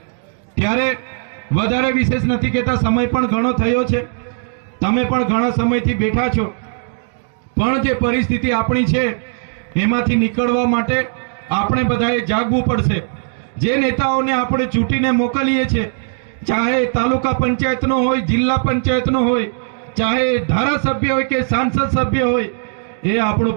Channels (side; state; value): left; silent; 67 dB below the other